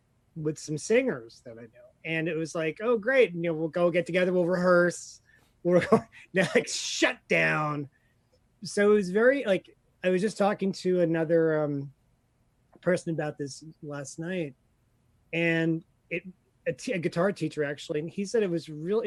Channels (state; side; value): identical; both; correlation 1.00